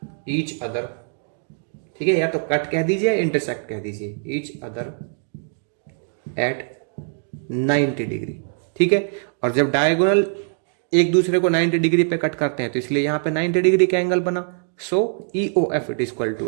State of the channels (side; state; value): left; silent; 57 dB below the other